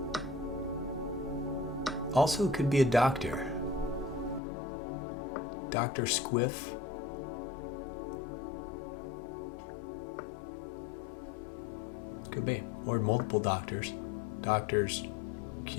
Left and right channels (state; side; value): drops out; right; at 4.4 s